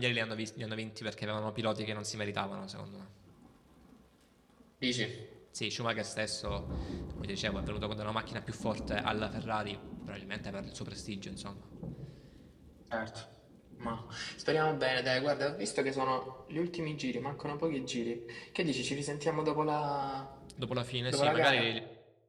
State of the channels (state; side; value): identical; both; correlation 1.00